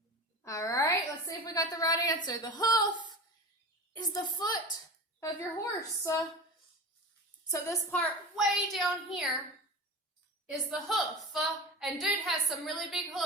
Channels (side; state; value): both; normal; correlation 0.29